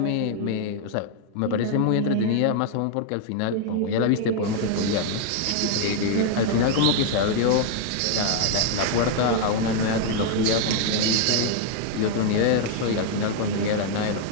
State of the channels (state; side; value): different; both; correlation 0.00